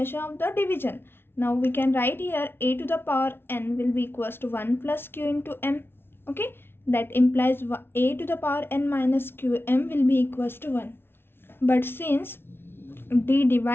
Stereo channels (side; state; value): right; late; 0.11 ms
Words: of the division. Now we can write here a to the power n will be equals to 1 plus q into m. Okay, that implies a to the power n minus qm will be equals to 1. But since d